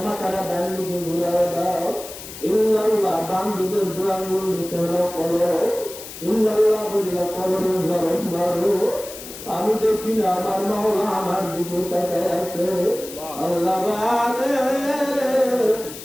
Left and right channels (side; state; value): left; noise; hiss, 13 dB below the sound